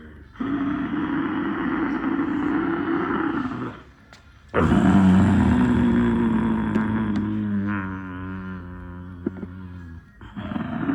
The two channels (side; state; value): both; identical; correlation 1.00